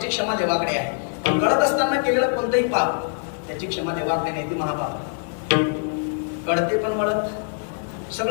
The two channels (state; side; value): silent; right; digital silence